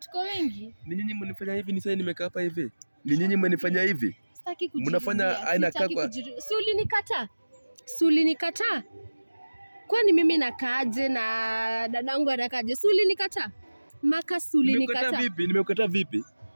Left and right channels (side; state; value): both; inverted; correlation -1.00